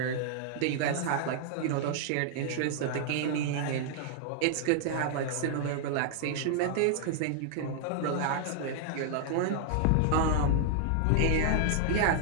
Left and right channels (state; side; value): different; both; correlation 0.00